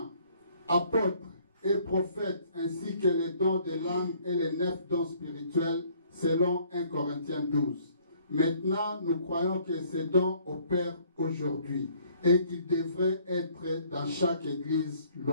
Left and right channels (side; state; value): both; inverted; correlation -0.61